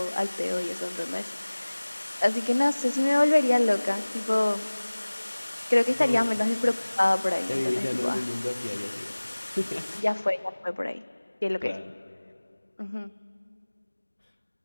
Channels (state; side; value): inverted; both; correlation -1.00